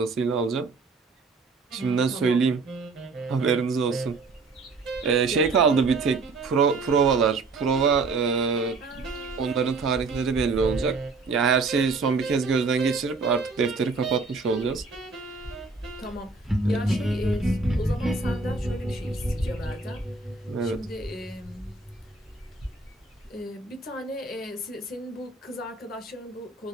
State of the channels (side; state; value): left; quieter; 4.1 dB